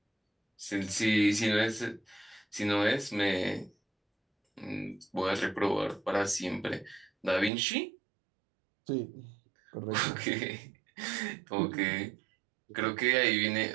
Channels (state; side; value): drops out; left; at 7.5 s